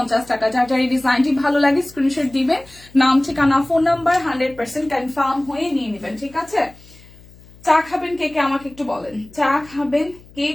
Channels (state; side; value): noise; left; hum, 24 dB below the sound